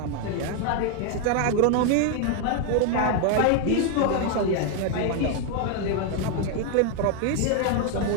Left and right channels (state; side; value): different; both; correlation 0.01